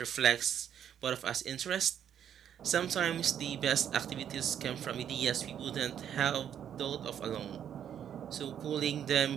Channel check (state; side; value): quieter; left; 9.3 dB